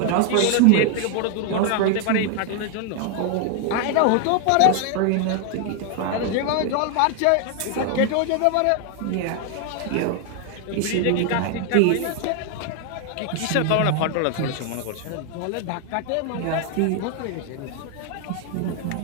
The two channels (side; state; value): both; different; correlation 0.00